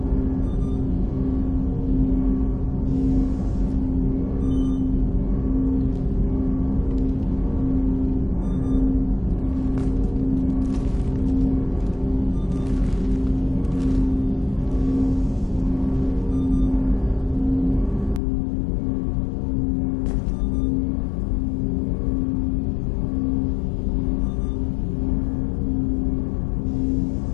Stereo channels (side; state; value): right; drops out; at 18.2 s